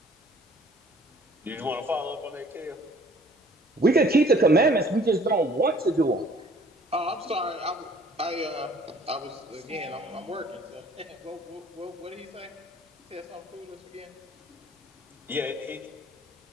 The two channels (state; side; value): normal; both; correlation 0.55